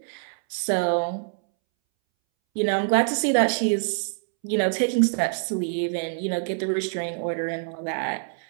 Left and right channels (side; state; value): left; silent; 62 dB below the other